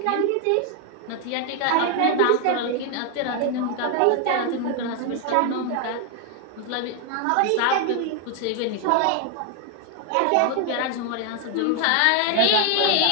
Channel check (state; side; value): different; both; correlation 0.00